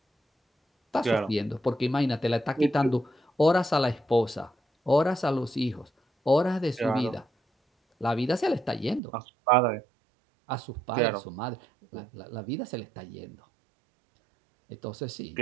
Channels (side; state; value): left; drops out; at 9.0 s